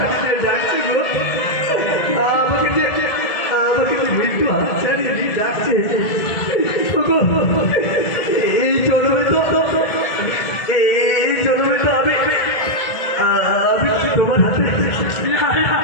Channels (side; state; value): right; late; 2.2 ms